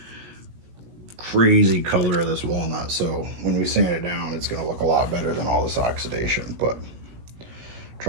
crazy color of this walnut. So when we sand it down, it's gonna look a lot better than all this oxidation, but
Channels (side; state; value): left; late; 17 ms